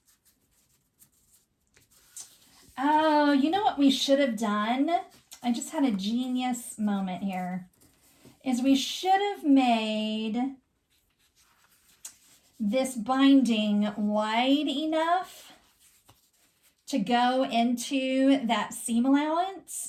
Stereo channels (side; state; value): both; identical; correlation 1.00